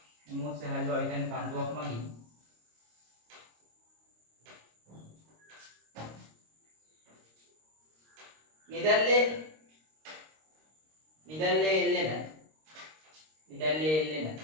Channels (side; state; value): left; late; 26 ms